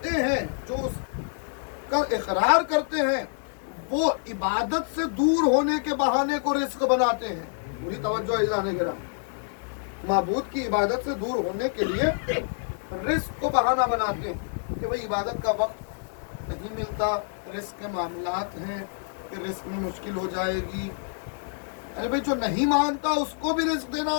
ہیں، جو اس کا اقرار کرتے ہیں، وہ عبادت سے دور ہونے کے بہانے کو رزق بناتے ہیں. پوری توجہ عزیزان گرامی، معبود کی عبادت سے دور ہونے کے لیے رزق کو بہانہ بناتے ہیں کہ بھئی عبادت کا وقت نہیں ملتا، رزق کے معاملات ہیں کہ رزق میں مشکل ہو جائے گی. ارے بھئی جو نہیں مانتا اس کو بھی رزق دینا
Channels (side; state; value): right; silent; digital silence